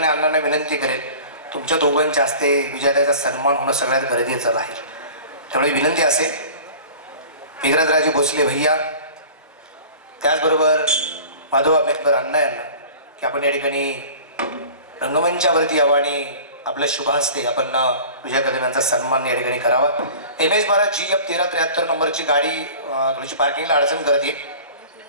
अण्णांना विनंती करेन, तुमच्या दोघांच्या हस्ते विजयाचा सन्मान होणं सगळ्यात गरजेचं आहे. त्यामुळे विनंती असेल मेघराजराजे भोसले भैया त्याचबरोबर माधव आंबेडकर अण्णा यांना की आपण या ठिकाणी रंगमंचावरती यावं आणि आपल्या शुभ हस्ते आपण विजय कदम यांचा सन्मान या ठिकाणी करावा. MS-12 GF 1373 नंबरची गाडी थोडीशी पार्किंगला अडचण करते.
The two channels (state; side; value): inverted; both; correlation -0.41